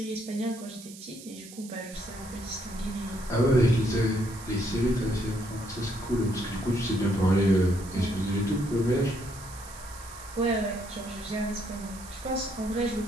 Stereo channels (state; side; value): noise; right; hiss, 16 dB below the sound